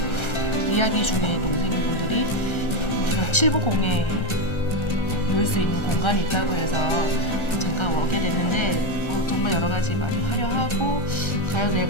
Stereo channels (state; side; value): late; right; 1.3 ms